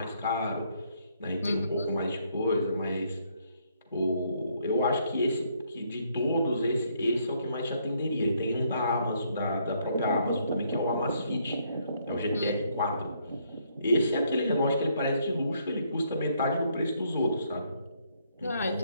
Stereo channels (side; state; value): both; inverted; correlation -0.70